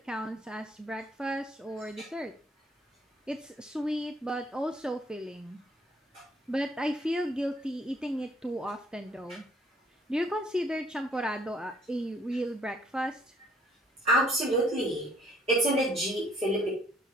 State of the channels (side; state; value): both; normal; correlation 0.63